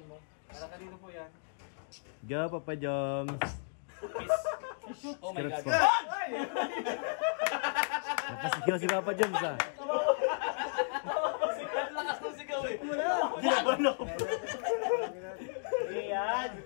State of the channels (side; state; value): right; silent; digital silence